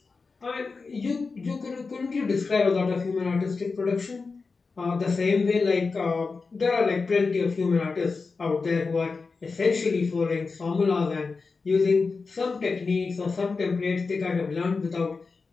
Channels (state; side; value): quieter; right; 4.4 dB